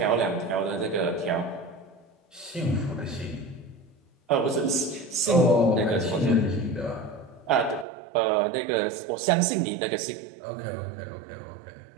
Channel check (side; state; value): left; drops out; at 7.9 s